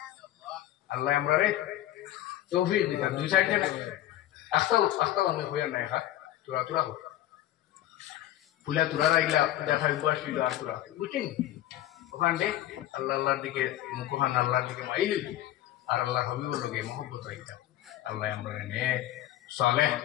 আল্লাহ আমরা রে তৌফিক দিতাম দুই সাইডে আস্তাও আমি হইয়া নাই খা তুরা হোক ফুলা তুরা রাইলা দেখা উপাসিল আর তুরা বুঝছেন ওখান দে আল্লাহর দিকে মুখখান আল্লাহর দিকে মাইলি আর আল্লাহ হবিবর লগে মহব্বত রাইতাম। আল্লাহ আমরা নে সালেহ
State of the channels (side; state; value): right; quieter; 13.8 dB